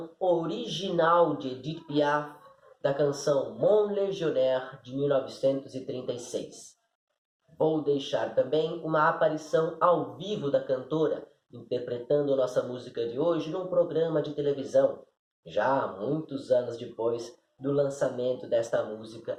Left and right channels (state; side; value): identical; both; correlation 1.00